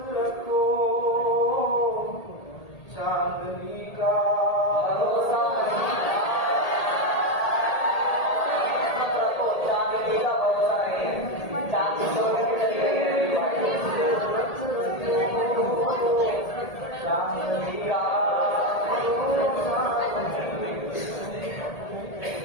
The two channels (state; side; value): late; right; 1.8 ms